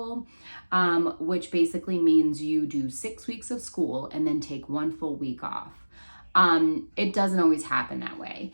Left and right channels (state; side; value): inverted; both; correlation -1.00